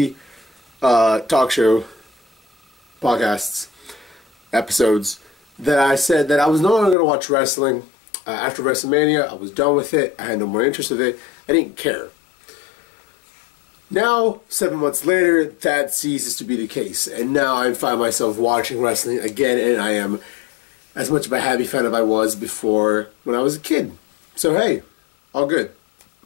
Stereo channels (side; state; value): right; drops out; at 7.0 s